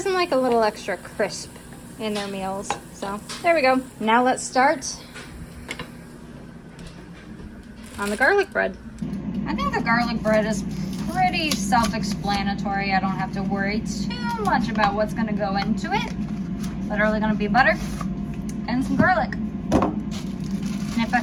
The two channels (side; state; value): both; identical; correlation 1.00